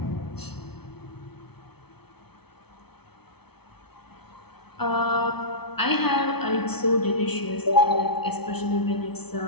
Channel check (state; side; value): late; right; 0.98 ms